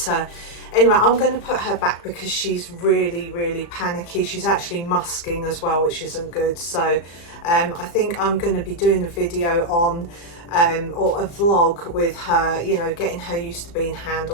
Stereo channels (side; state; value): right; late; 35 ms